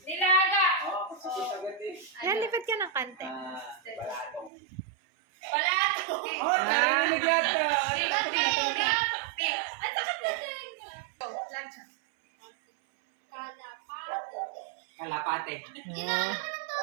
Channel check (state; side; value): drops out; left; at 4.5 s